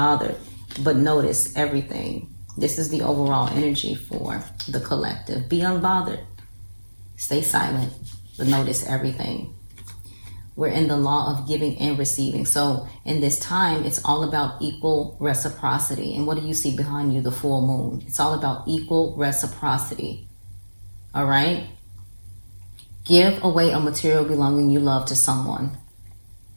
but notice everything. This is the overall energy for the collective. Be unbothered. Stay silent, but notice everything. We're in the law of giving and receiving. So in this time, it's all about equal reciprocity. And what do you see behind you? The full moon. It's all about equal reciprocity. All right? Give away a material belonging you love to someone.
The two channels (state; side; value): inverted; both; correlation -1.00